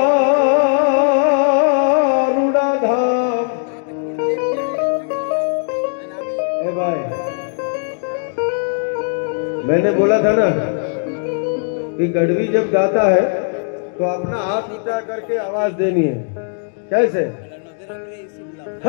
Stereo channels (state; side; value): silent; right; digital silence